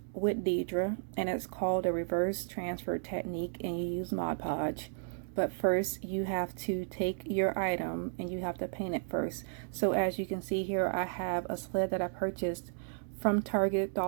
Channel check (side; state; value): left; silent; digital silence